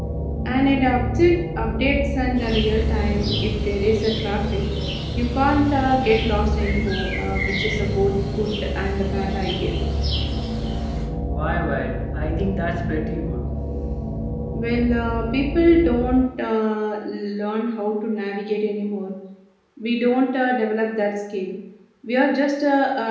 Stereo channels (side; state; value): both; identical; correlation 1.00